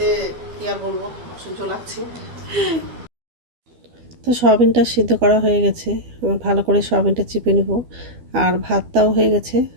কী আর বলবো, অসহ্য লাগছে। তো সয়াবিনটা সিদ্ধ করা হয়ে গেছে, ভালো করে সয়াবিনটা চিপে নেব, আর ভাতটাও হয়ে গেছে।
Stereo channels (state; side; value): late; left; 12 ms